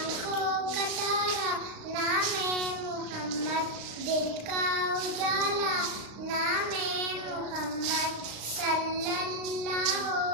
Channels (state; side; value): late; left; 35 ms